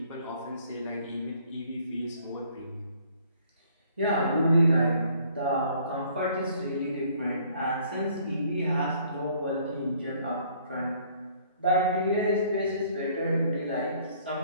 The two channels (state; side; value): inverted; both; correlation -0.60